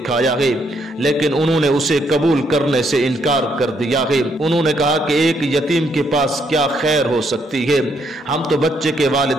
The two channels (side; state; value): both; normal; correlation 0.73